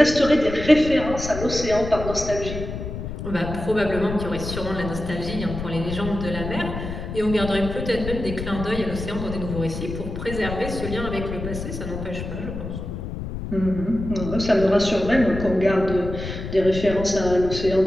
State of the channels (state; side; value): noise; left; rumble, 7 dB below the sound